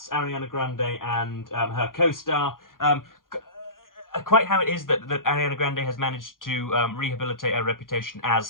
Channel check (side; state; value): right; late; 0.90 ms